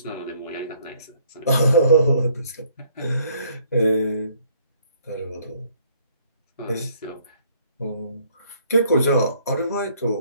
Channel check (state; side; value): inverted; both; correlation -0.63